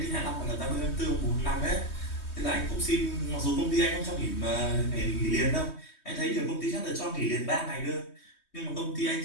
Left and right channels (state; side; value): late; right; 3.2 ms